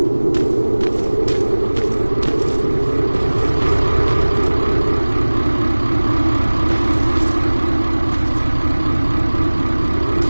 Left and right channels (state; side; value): inverted; both; correlation -1.00